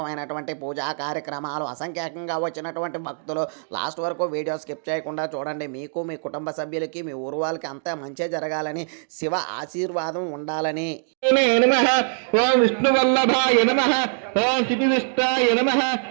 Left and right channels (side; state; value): left; silent; digital silence